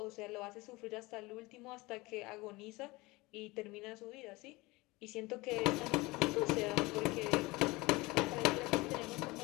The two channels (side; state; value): right; quieter; 22.5 dB